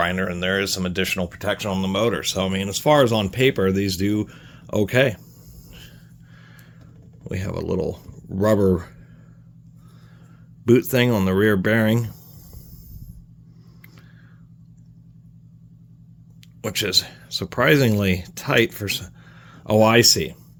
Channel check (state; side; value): identical; both; correlation 1.00